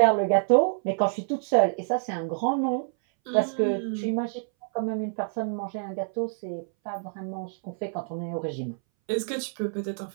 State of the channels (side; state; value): left; silent; 60 dB below the other